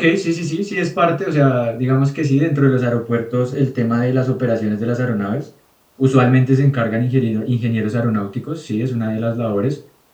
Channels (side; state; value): both; identical; correlation 1.00